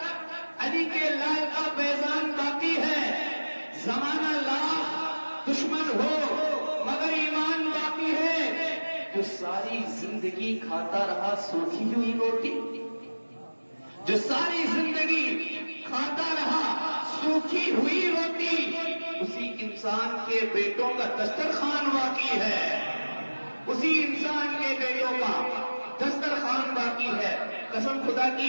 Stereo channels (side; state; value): both; inverted; correlation -1.00